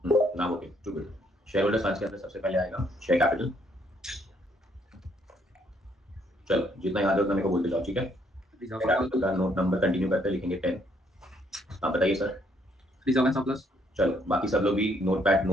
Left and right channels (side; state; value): both; normal; correlation 0.69